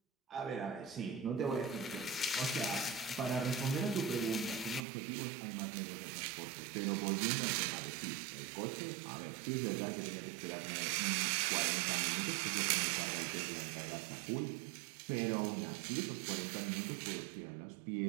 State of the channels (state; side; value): drops out; left; at 4.9 s